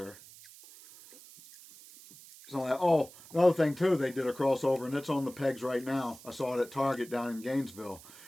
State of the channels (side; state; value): right; noise; hiss, 20 dB below the sound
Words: So another thing too, they did a crossover, and it's on the pegs right now. I saw it at Target down in Gainesville.